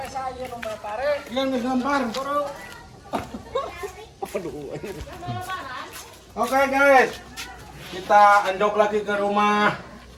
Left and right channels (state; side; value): identical; both; correlation 1.00